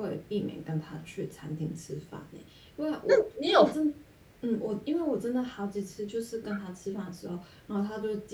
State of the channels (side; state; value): both; identical; correlation 1.00